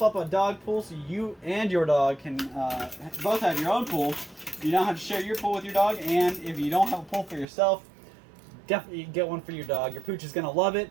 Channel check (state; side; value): drops out; left; at 7.5 s